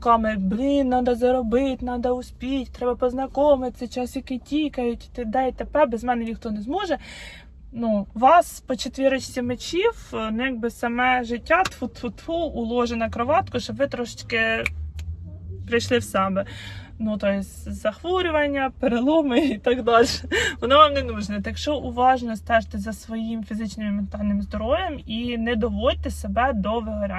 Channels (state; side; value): identical; both; correlation 1.00